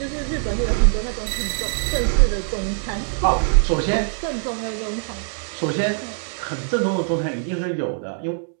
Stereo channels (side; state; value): left; silent; 64 dB below the other